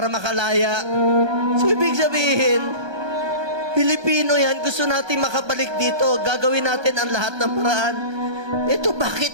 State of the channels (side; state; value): left; late; 1.2 ms